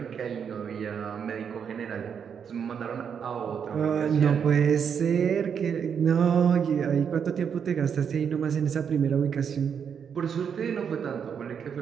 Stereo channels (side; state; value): left; quieter; 7.3 dB